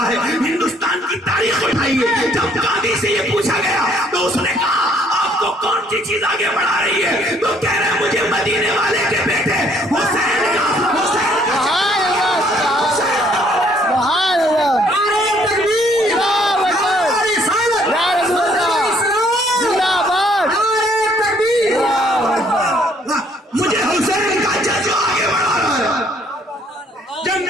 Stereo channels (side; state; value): both; normal; correlation 0.64